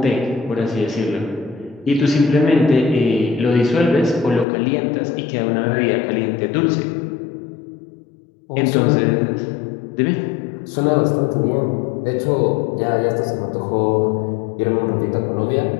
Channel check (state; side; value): drops out; right; at 4.5 s